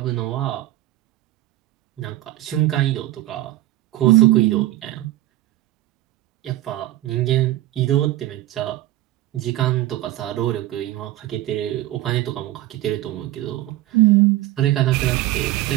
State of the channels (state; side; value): quieter; left; 15.6 dB